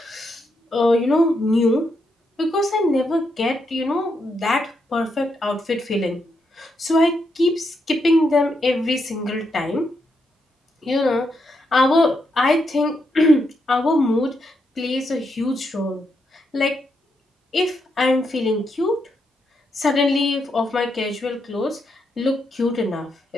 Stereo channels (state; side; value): normal; both; correlation 0.81